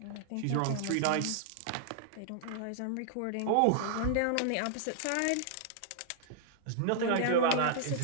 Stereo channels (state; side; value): different; both; correlation -0.01